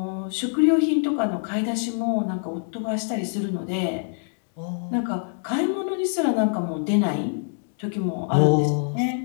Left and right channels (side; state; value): right; silent; 59 dB below the other